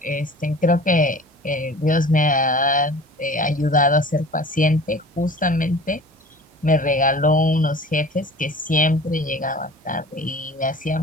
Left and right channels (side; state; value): both; normal; correlation 0.43